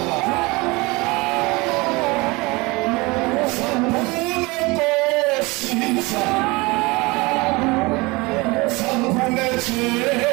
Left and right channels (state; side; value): quieter; left; 24.2 dB